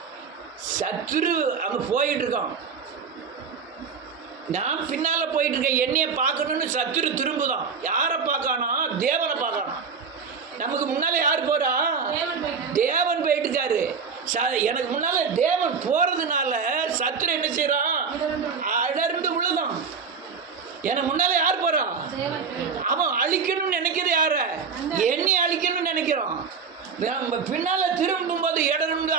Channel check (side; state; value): left; quieter; 5.7 dB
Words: சத்துரு அங்கே போயிட்டு இருக்கான், நான் பின்னால் போயிட்டு இருக்கேன். என்னைய பார்க்கணும்னு சத்துரு திரும்புதான். யாரை பார்க்கானா? தேவனை பார்க்கானா. நமக்கு முன்னால் யார் போகிறா? தேவன் போயிட்டு இருக்காரு. எனக்கு முன்னால் தேவன் போகிறதுனால சத்துரு என்ன செய்கிறான்? அடர்ந்து விழுதான். எனக்கு முன்னால் யார் போகிறா? அவன் அழிக்கணும்னு நினைக்கிறது யார? என்னை அழிக்கணும்னு நினைக்கிறான். பின்னால் திரும்பும்போது இடர்ந்து